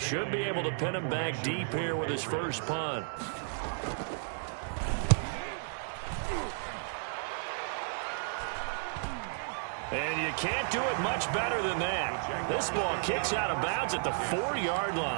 be able to pin him back deep here with his first punt. And you can't do it much better than that. This ball kicks out of bounds at the 4-yard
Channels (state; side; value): silent; left; digital silence